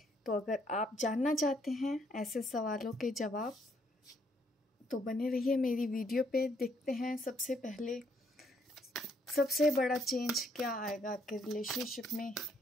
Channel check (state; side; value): normal; both; correlation 0.70